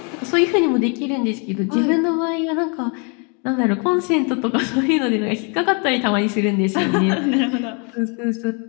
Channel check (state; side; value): quieter; right; 35.7 dB